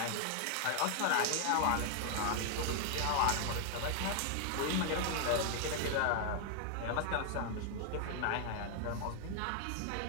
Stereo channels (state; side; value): different; both; correlation 0.00